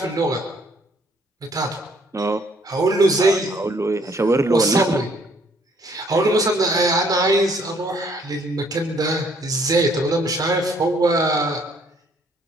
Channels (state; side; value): normal; both; correlation 0.64